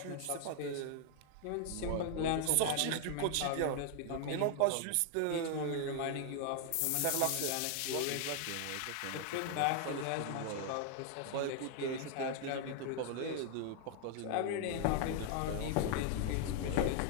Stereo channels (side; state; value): both; different; correlation 0.00